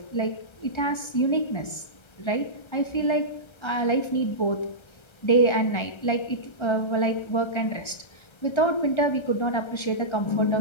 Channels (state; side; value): late; right; 1.3 ms